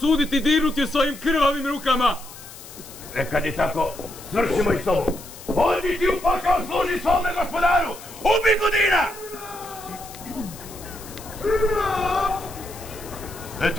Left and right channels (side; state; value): left; noise; hiss, 16 dB below the sound